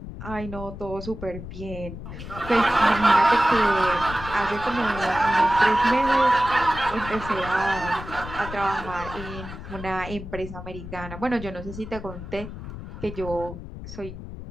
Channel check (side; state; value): left; noise; rumble, 11 dB below the sound